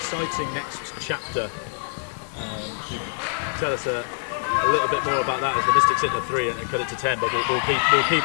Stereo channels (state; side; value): silent; right; digital silence